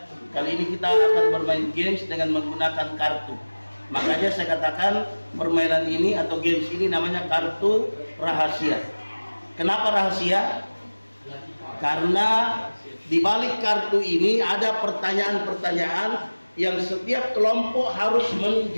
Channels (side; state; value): both; inverted; correlation -1.00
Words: Kali ini kita akan bermain games dengan menggunakan kartu. Makanya saya katakan permainan ini atau games ini namanya kartu rahasia. Kenapa rahasia? Karena di balik kartu ini ada pertanyaan-pertanyaan yang setiap kelompok harus